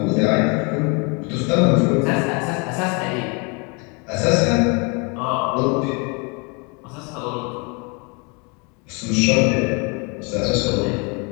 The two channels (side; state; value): right; quieter; 32.1 dB